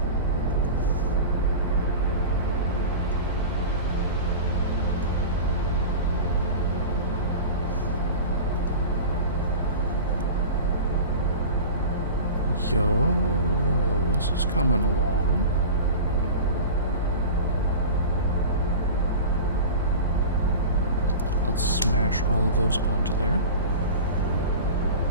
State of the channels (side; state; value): both; inverted; correlation -0.33